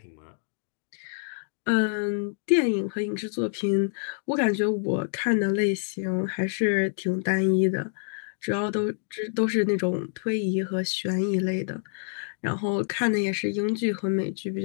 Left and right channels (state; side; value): silent; right; digital silence